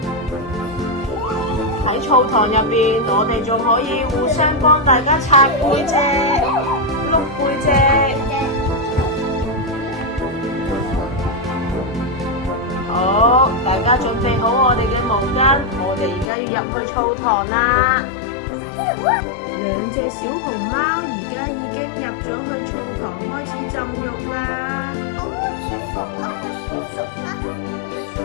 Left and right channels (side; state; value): right; drops out; at 16.3 s